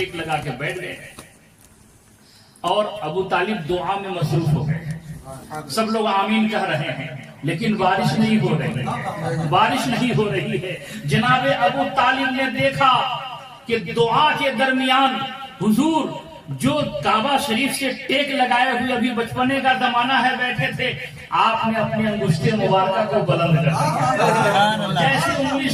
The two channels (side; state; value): both; identical; correlation 1.00